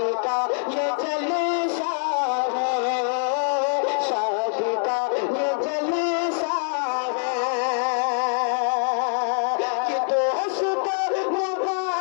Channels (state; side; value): silent; right; digital silence